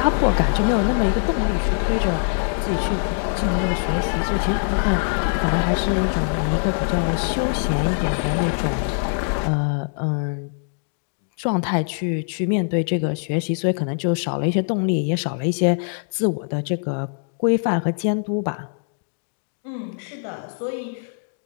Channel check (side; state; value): right; silent; digital silence